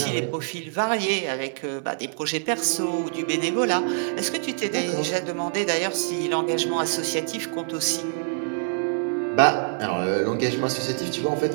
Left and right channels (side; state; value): left; silent; digital silence